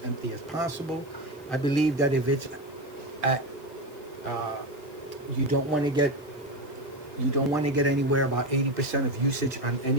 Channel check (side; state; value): left; noise; hiss, 26 dB below the sound